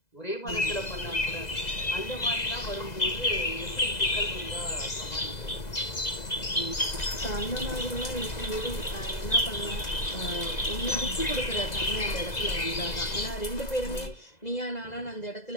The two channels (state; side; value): late; right; 2.0 ms